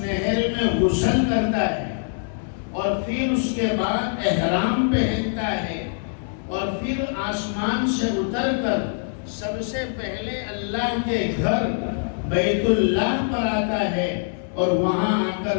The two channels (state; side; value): silent; right; digital silence